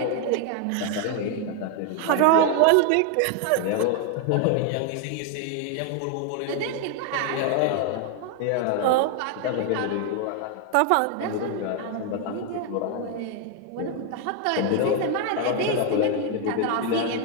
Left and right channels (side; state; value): both; different; correlation 0.01